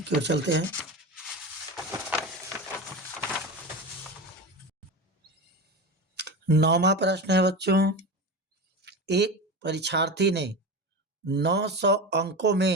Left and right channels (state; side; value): normal; both; correlation 0.25